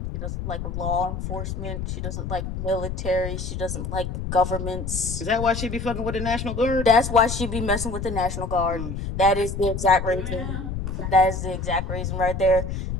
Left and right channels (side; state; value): left; noise; rumble, 5 dB below the sound